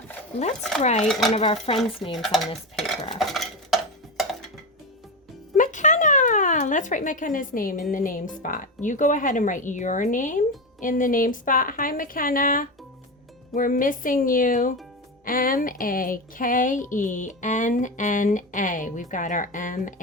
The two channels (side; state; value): both; normal; correlation 0.18